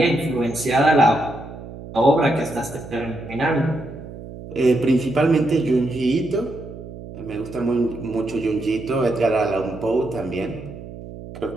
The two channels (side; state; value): right; noise; hum, 13 dB below the sound